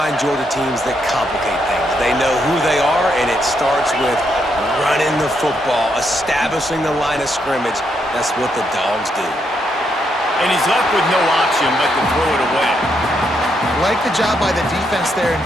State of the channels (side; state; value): both; normal; correlation 0.78